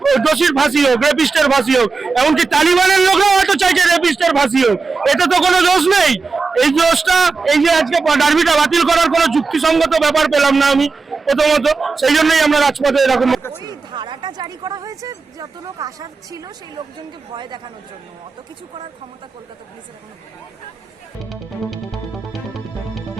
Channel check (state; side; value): quieter; left; 4.4 dB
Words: দোষীর ফাঁসি হোক, রেপিস্টের ফাঁসি হোক। এমনকি তালিবানের লোকরাও হয়তো চাইছে রেপিস্টের ফাঁসি হোক। এটা তো কোনো দোষ নেই। এই দোষটা, এই যে আজকে ডার্বিটা বাতিল করার কোনো যুক্তিসঙ্গত ব্যাপার পেলাম না আমি প্রথমত, সেই জন্যই আমরা রাজপথে এরকম। ওই ধারাটা জারি করা হয়েছে যত লোক আসার ছিল সেই লোকজনকে ভয় দেখানোর জন্য। অত কিছু করার ক্ষমতা কলকাতা পুলিশের এখনো নেই।